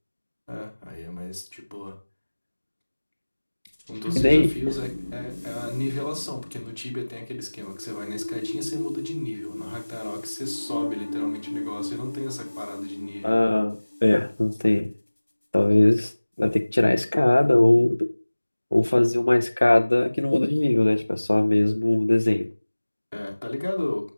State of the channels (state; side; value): inverted; both; correlation -1.00